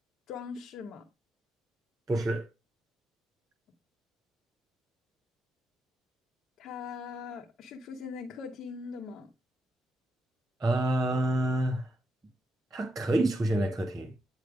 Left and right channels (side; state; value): both; normal; correlation 0.83